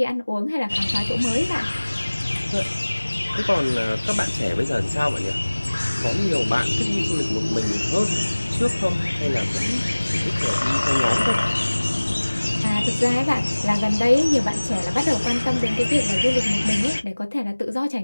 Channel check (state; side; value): inverted; both; correlation -1.00